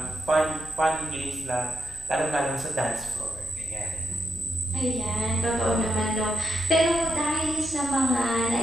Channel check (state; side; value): noise; left; hum, 19 dB below the sound